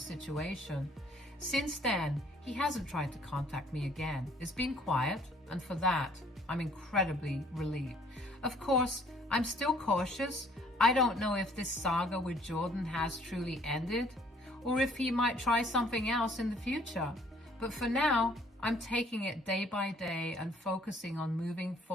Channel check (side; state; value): both; normal; correlation 0.60